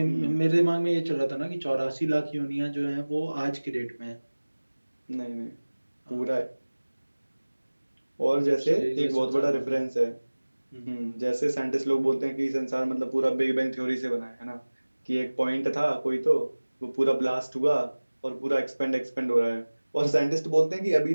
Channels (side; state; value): both; inverted; correlation -1.00